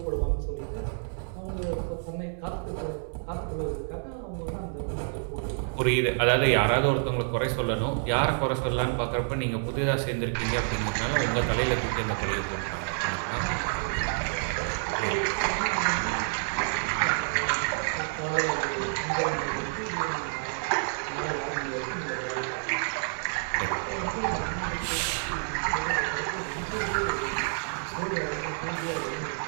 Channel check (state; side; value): silent; left; digital silence